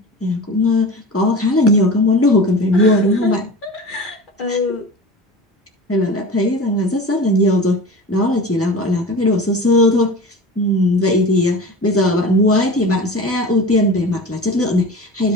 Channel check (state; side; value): normal; both; correlation 0.33